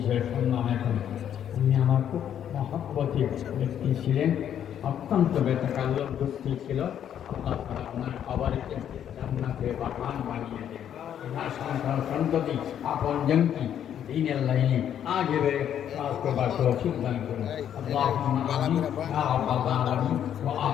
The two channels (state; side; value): quieter; right; 9.7 dB